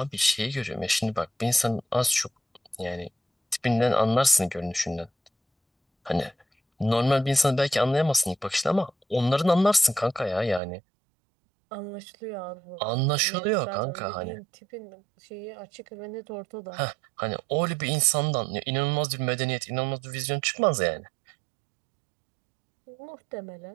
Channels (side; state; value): left; drops out; at 10.6 s